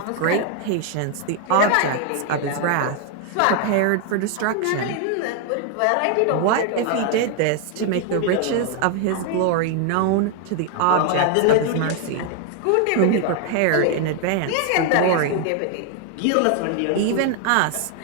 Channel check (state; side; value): different; both; correlation 0.00